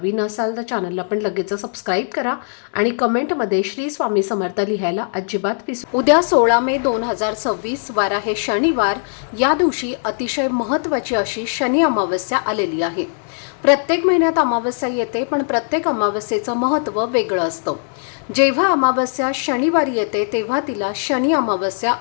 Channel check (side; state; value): right; silent; digital silence